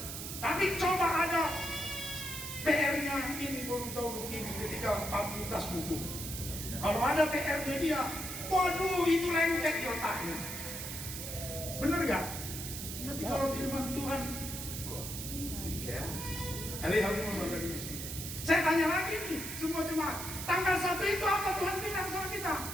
Tapi coba ada PR-nya ini baru tahu begini ketika fakultas hukum. Kalau ada PR-nya dia, waduh itu lengket di otaknya. Bener gak? Tapi kalau firman Tuhan, kok itu ya? Saya tanya lagi nih semua jemaat, tanggal 1 itu apa Tuhan bilang sama kita?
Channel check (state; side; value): noise; right; hiss, 7 dB below the sound